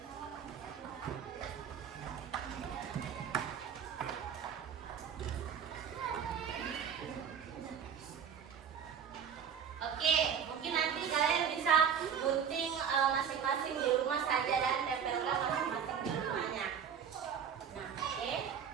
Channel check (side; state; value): left; quieter; 7.8 dB